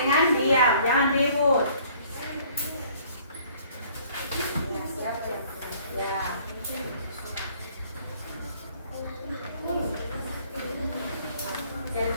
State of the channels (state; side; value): inverted; both; correlation -0.57